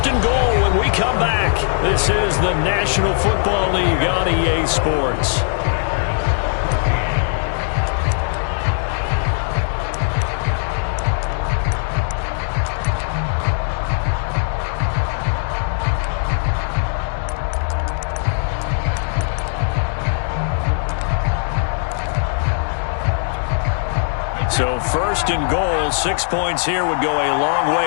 and goal when we come back. This is the National Football League on EA Sports. So 1st and goal, 6 points here would go a long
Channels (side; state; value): right; silent; digital silence